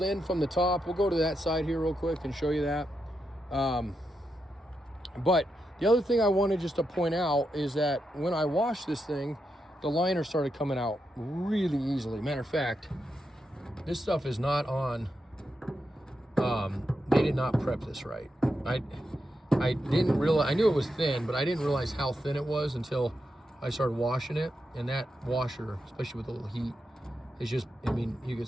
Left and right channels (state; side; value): normal; both; correlation 0.85